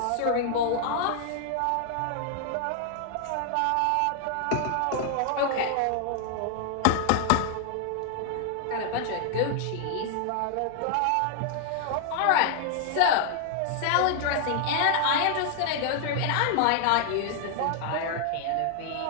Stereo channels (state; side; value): different; both; correlation 0.00